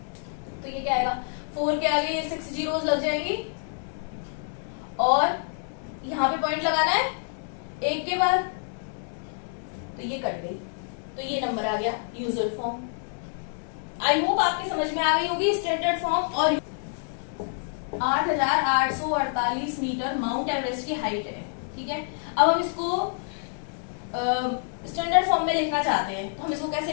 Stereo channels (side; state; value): right; silent; digital silence